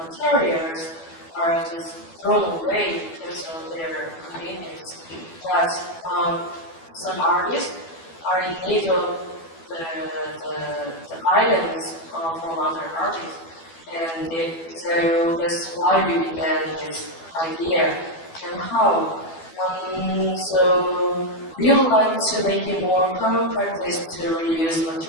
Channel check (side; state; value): right; late; 12 ms